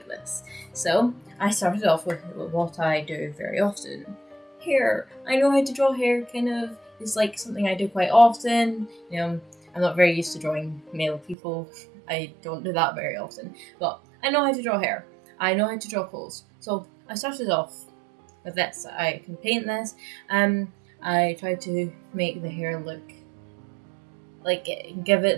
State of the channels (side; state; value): left; drops out; at 11.4 s